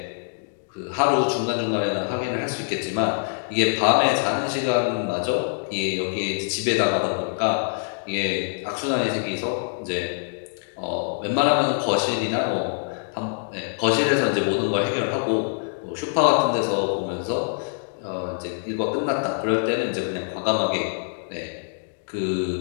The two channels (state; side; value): silent; right; digital silence